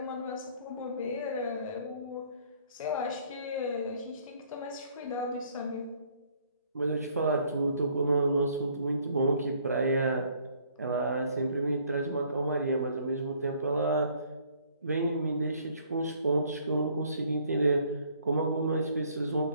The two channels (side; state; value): both; inverted; correlation -0.62